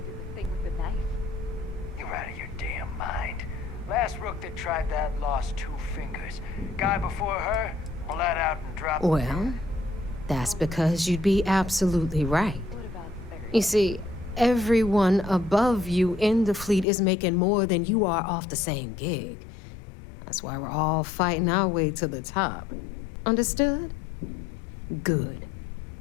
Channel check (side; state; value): right; drops out; at 16.9 s